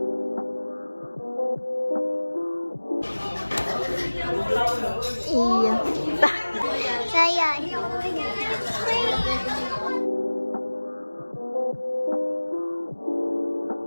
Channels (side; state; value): both; inverted; correlation -1.00